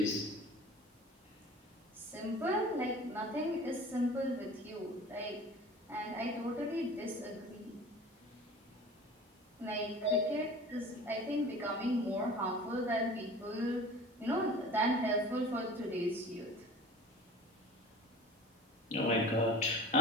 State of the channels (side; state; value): both; normal; correlation 0.42